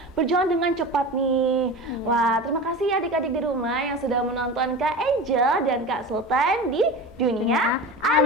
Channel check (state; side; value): normal; both; correlation 0.30